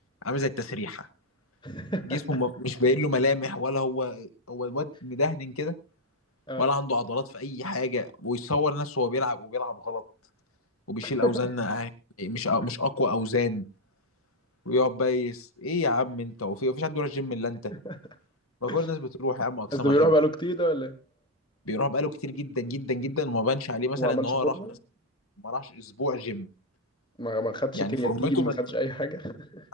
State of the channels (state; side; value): normal; both; correlation 0.00